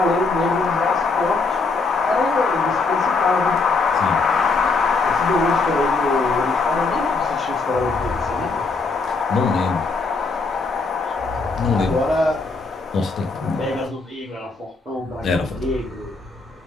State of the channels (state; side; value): quieter; right; 4.0 dB